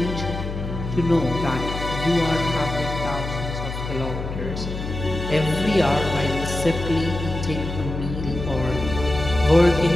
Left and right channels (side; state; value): left; noise; hum, 6 dB below the sound